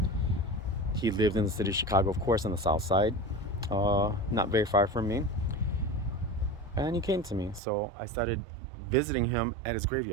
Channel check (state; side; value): drops out; left; at 7.6 s